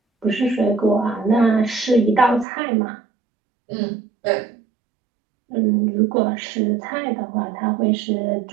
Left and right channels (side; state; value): left; drops out; at 2.5 s